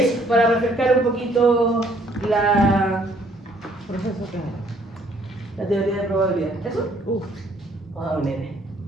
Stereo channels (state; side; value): normal; both; correlation 0.63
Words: para refrescar un poquito la teoría de probabilidad. ¿Eso? Ah, un N.